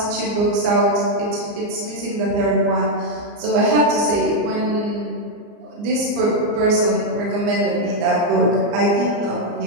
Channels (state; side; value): late; left; 34 ms